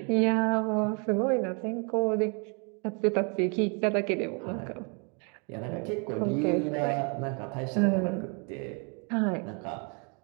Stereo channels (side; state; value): left; quieter; 35.6 dB